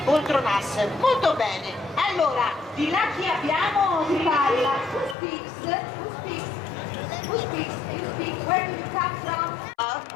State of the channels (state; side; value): drops out; right; at 5.2 s